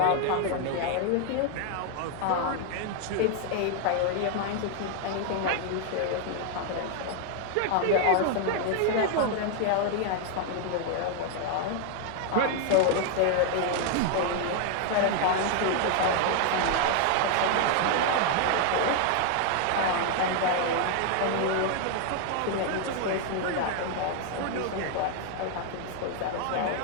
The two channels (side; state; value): both; different; correlation 0.00